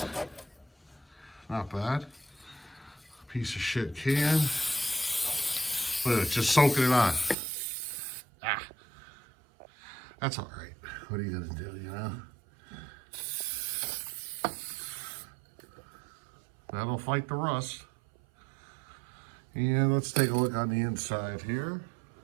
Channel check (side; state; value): left; drops out; at 7.4 s